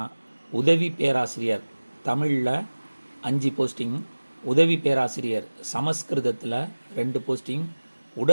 உதவி பேராசிரியர் தமிழில் 5 போஸ்டிங், உதவி பேராசிரியர் சமஸ்கிருதத்தில் 2 போஸ்டிங்,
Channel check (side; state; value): both; inverted; correlation -1.00